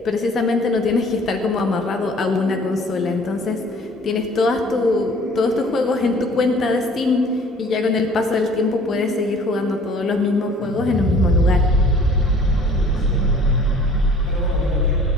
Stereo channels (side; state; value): both; normal; correlation 0.52